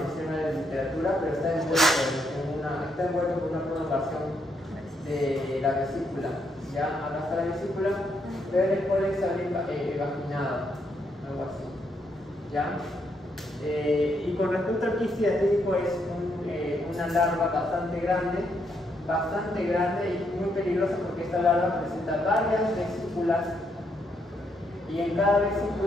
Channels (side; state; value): both; normal; correlation 0.76